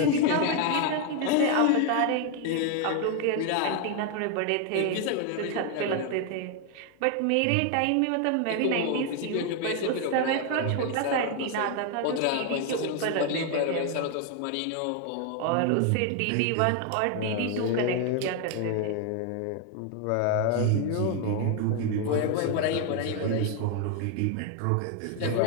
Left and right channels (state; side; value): different; both; correlation 0.01